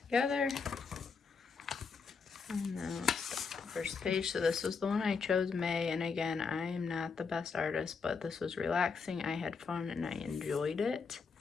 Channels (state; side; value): quieter; right; 5.3 dB